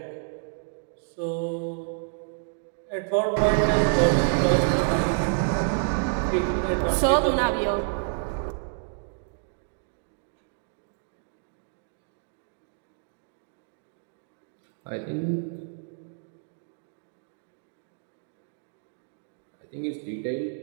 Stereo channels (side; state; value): left; silent; digital silence